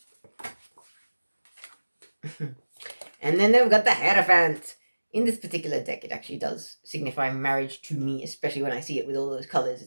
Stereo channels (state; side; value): inverted; both; correlation -1.00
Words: And then they've got the Hierophant. In this particular deck, it actually does signify marriage to me, especially when I see it with all those colors.